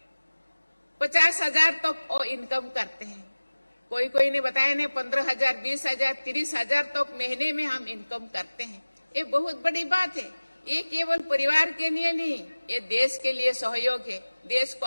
50,000 तक वो इनकम करते हैं। कोई ने बताया ने 15,000, 20,000, 30,000 तक महीने में हम इनकम करते हैं। ये बहुत बड़ी बात है। ये केवल परिवार के लिए नहीं, ये देश के लिए सहयोग है। देश को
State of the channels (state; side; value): inverted; both; correlation -1.00